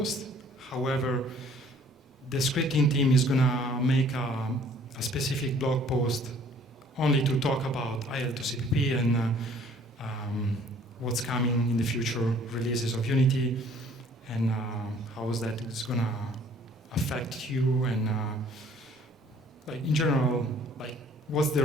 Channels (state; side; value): normal; both; correlation 0.56